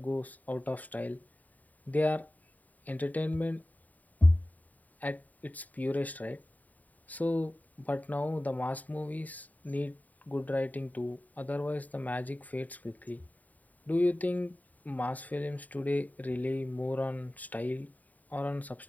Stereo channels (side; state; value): right; late; 0.076 ms